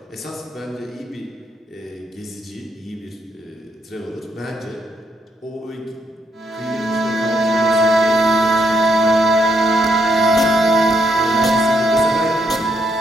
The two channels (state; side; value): normal; both; correlation 0.76